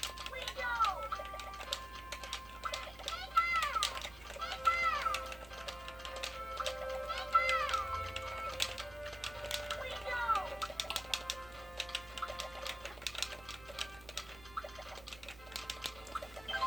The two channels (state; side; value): noise; right; hum, 18 dB below the sound